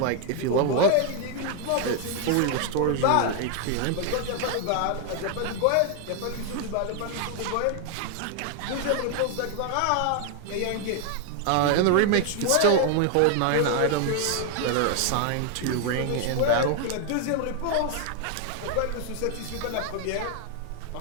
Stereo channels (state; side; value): different; both; correlation 0.00